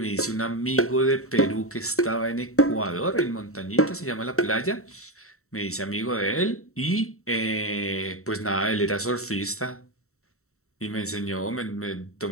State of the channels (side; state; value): right; late; 0.64 ms